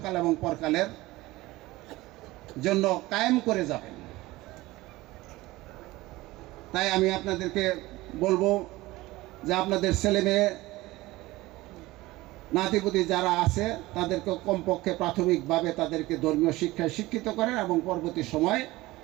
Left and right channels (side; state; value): left; quieter; 19.1 dB